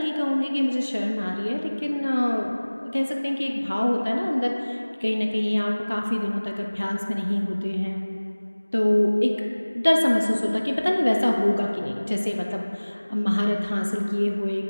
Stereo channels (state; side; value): inverted; both; correlation -1.00